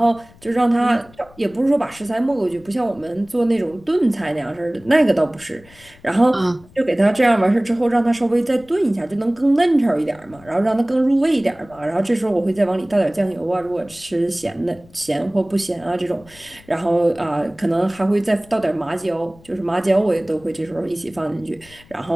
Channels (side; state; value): left; noise; rumble, 25 dB below the sound